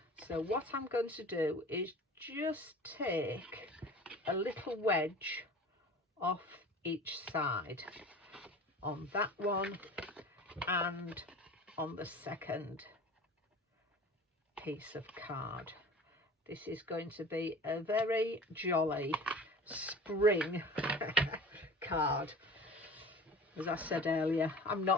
So what I'm going to do is just take a little wedge off each side, on that one and on the second piece of card. This is going to be a very jolly spring card. As I said earlier, I'm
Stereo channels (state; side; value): normal; both; correlation 0.40